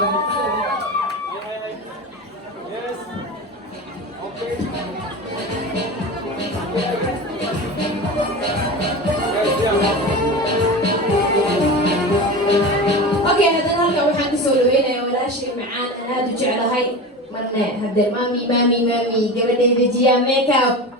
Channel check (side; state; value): both; normal; correlation 0.28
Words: Okay, هذا هلقا waxaan kusoo dhaweynaya walaashay macaan aan aad u jeclahay marna hadda mami gabadheeda jiya makeup